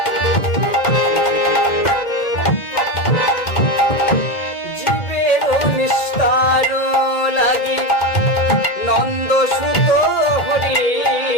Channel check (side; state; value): right; late; 1.9 ms